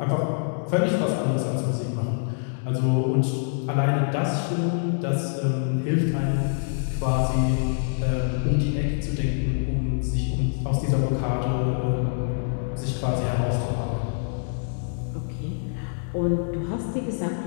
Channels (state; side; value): silent; right; digital silence